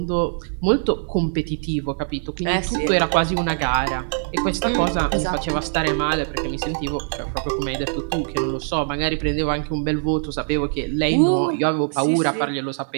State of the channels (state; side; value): silent; left; 64 dB below the other